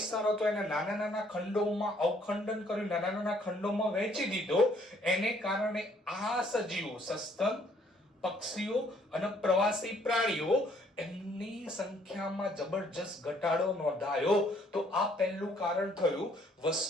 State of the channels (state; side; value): normal; both; correlation 0.64